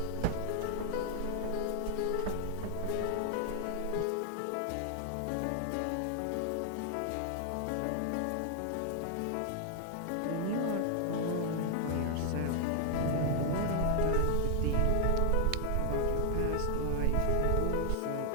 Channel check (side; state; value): both; different; correlation 0.00